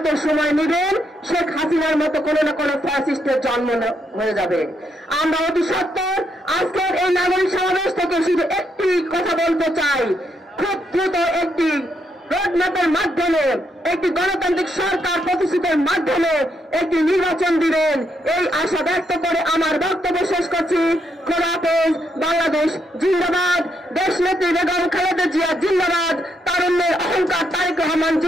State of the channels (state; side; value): normal; both; correlation 0.77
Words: সময় নেবেন শেখ হাসিনার মতো কোনো না কোনো ফ্যাসিস্টের জন্ম হয়ে যাবে। আমরা অতি সত্বর আজকের এই নাগরিক সমাবেশ থেকে শুধু একটি কথা বলতে চাই, খুব দ্রুত একটি রোডম্যাপের মাধ্যমে, একটি গণতান্ত্রিক সরকার প্রতিষ্ঠিতের মাধ্যমে একটি নির্বাচন দিবেন, এই আশা ব্যক্ত করে আমার বক্তব্য শেষ করছি। খোদা হাফেজ। বাংলাদেশ জিন্দাবাদ। দেশনেত্রী বেগম খালেদা জিয়া জিন্দাবাদ। তারুণ্যের অহংকার তারেক রহমান